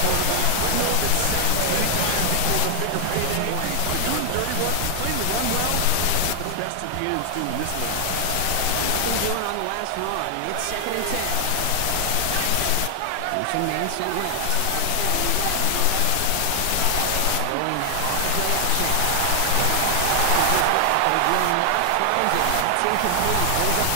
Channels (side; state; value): both; different; correlation 0.00